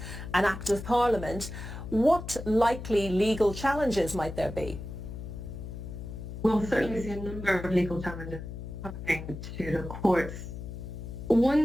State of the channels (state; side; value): noise; left; hum, 9 dB below the sound